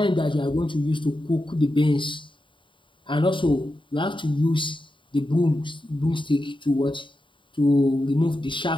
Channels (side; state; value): right; late; 0.24 ms